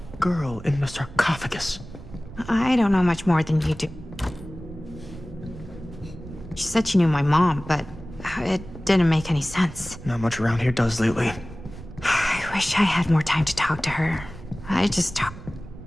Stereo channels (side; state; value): right; noise; rumble, 15 dB below the sound